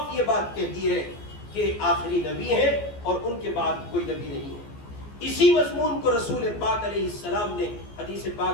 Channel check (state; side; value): late; right; 14 ms